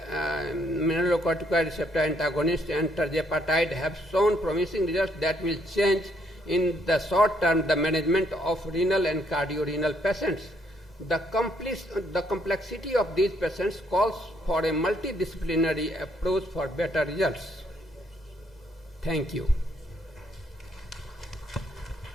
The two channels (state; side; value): normal; both; correlation 0.70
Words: mineralocorticoid receptor antagonists and tirzepatide have shown promising results that will change in the short term the management of renal and cardiorenal patients. The complexity of these patients calls for a multidisciplinary approach for better results. Thank you.